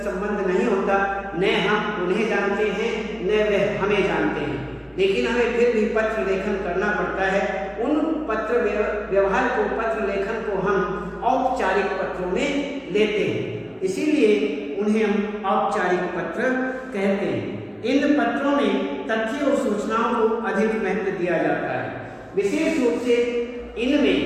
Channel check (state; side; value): identical; both; correlation 1.00